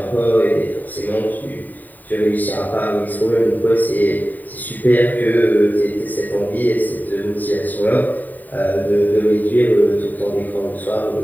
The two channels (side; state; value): right; late; 0.086 ms